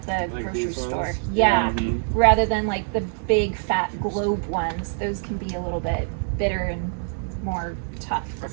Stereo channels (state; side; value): silent; left; digital silence